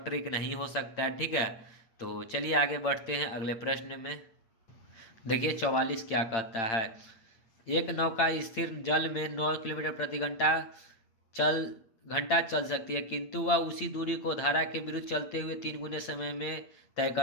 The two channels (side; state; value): right; late; 8.9 ms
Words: ट्रिक नहीं हो सकता है, ठीक है। तो चलिए आगे बढ़ते हैं अगले प्रश्न में। देखिए 44 क्या कहता है, एक नौका स्थिर जल में 9 किलोमीटर प्रति घंटा चल सकती है, किंतु वह उसी दूरी को धारा के विरुद्ध चलते हुए 3 गुने समय में तय